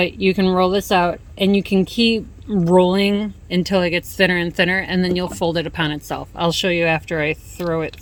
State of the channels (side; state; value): both; identical; correlation 1.00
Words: you can roll this out and you can keep rolling until it gets thinner and thinner, and then you'll fold it upon itself. I'll show you after I throw it